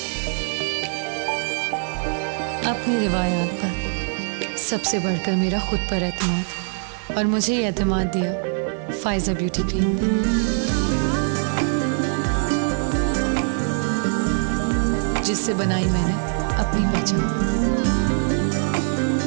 اپنی روایات پر, سب سے بڑھ کر میرا خود پر اعتماد. اور مجھے یہ اعتماد دیا فائزہ بیوٹی کریم نے, جس سے بنائی میں نے اپنی پہچان.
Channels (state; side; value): silent; left; 64 dB below the other